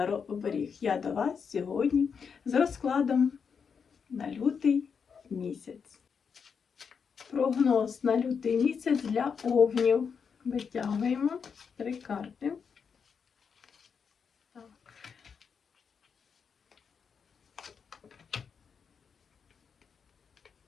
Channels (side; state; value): right; quieter; 6.3 dB